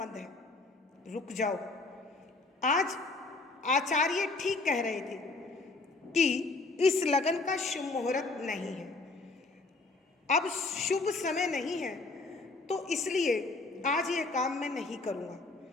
है। रुक जाओ, आज आचार्य ठीक कह रहे थे कि इस लगन का शुभ मुहूर्त नहीं है, अब शुभ समय नहीं है, तो इसलिए आज यह काम मैं नहीं करूँगा।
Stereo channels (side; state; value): right; quieter; 3.5 dB